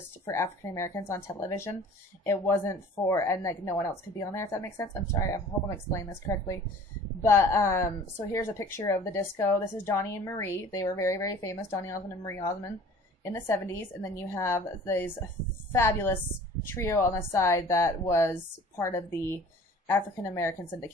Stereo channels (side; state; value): both; normal; correlation 0.47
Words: for African Americans on television. It wasn't for, and like no one else could be on there, if that makes sense. I'm sorry, I hope I'm explaining this correctly. But so here's a picture of the disco. This is Donnie and Marie. They were very, very famous, Donnie Osmond and Marie Osmond, in the 70s. And then you have this fabulous trio on the side that was part of the African American